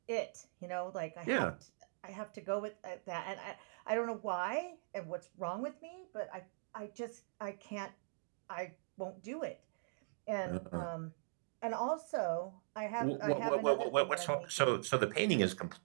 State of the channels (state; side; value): silent; left; digital silence